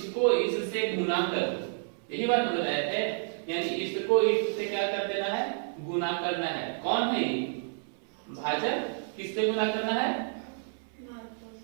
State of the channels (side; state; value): left; silent; 58 dB below the other